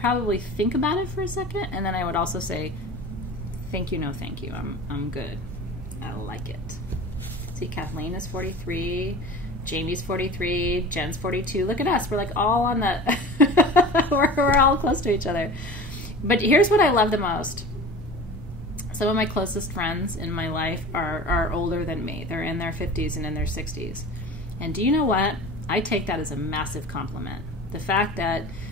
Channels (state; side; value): normal; both; correlation 0.36